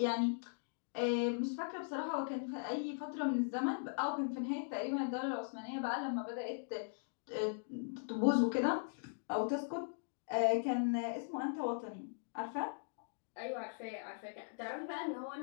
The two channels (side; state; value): right; silent; digital silence